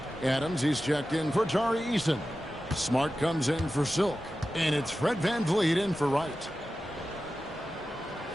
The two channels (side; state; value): both; normal; correlation 0.94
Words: Adams, he's checked in for Tari Eason. Smart comes in for Silk. And it's Fred VanVleet in for Wright.